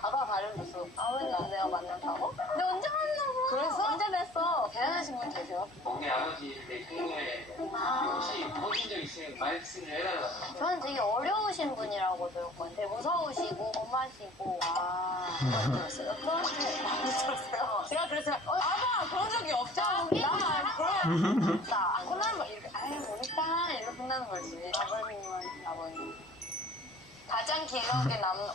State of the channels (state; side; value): normal; both; correlation 0.48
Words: 아빠 발음됐어. 아버님 내가 만났다고? 근데 언제 만나고? 그래서? 언제 냈어? 대단하신 분 계세요? 우리 아버지 생일에 혹시 보신 적 있으면 말씀을 해달라고. 저는 되게 어려우신 분이라고 들었거든요. 되게 무서우시고 엄하시고 많이 들었어요? 많이 들었어요. 제가 그래서 아빠 그런 적이 없죠? 나 그런 혼나는 거 이렇게 우리 딸 이렇게 혼나는 거지. 아버님. 가장 기억에 남는